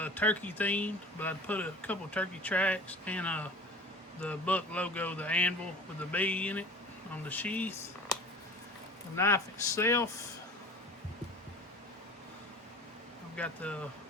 turkey themed, but I put a couple turkey tracks and the buck logo, the anvil with the bee in it on the sheath. The knife itself, I've got the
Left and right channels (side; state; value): both; normal; correlation 0.40